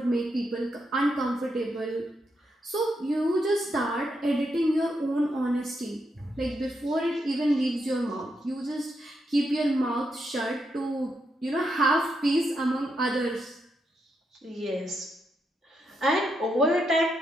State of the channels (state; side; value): normal; both; correlation 0.82